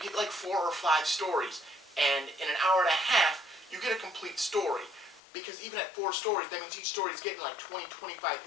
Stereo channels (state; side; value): drops out; right; at 5.2 s